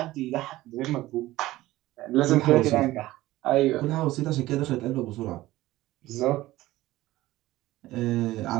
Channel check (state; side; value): quieter; left; 16.9 dB